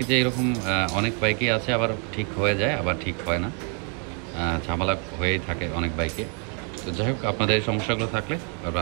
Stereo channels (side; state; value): left; quieter; 39.5 dB